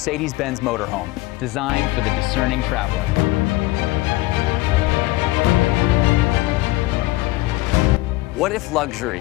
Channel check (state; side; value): quieter; right; 19.2 dB